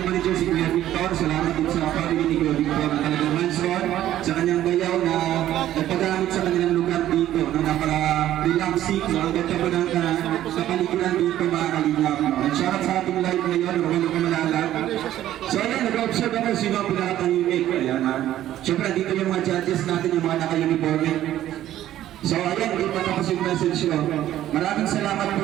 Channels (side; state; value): left; quieter; 12.8 dB